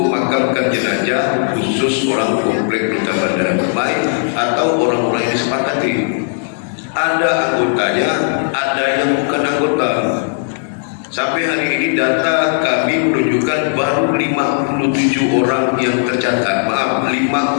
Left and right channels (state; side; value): silent; right; digital silence